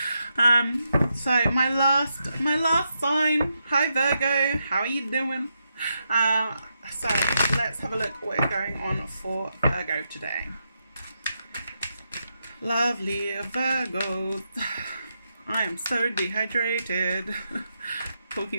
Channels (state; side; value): inverted; both; correlation -0.83